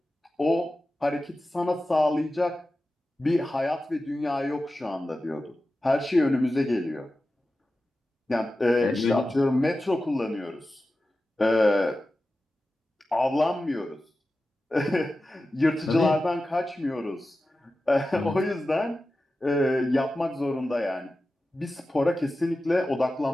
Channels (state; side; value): normal; both; correlation 0.94